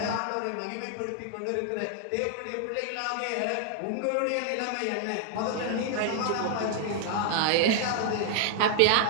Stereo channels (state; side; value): different; both; correlation 0.00